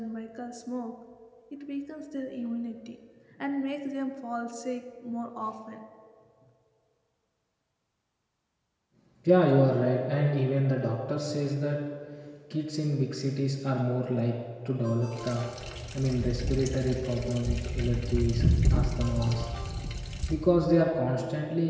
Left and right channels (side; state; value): both; identical; correlation 1.00